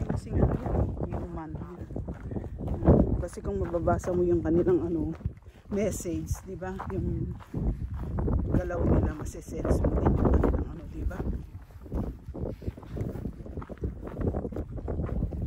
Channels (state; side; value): identical; both; correlation 1.00